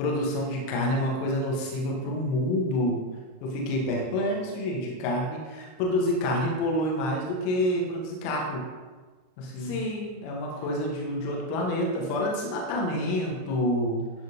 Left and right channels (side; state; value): right; late; 38 ms